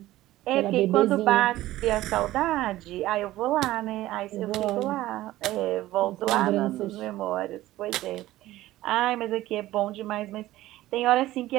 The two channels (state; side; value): quieter; left; 15.8 dB